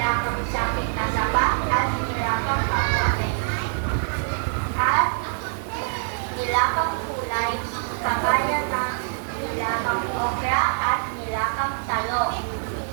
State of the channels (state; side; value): silent; left; digital silence